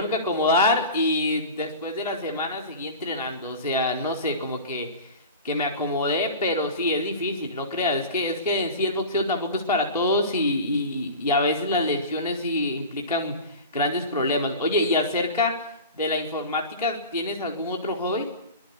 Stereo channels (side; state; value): both; inverted; correlation -0.33